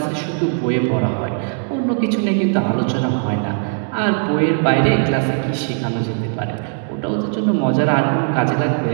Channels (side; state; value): left; silent; 57 dB below the other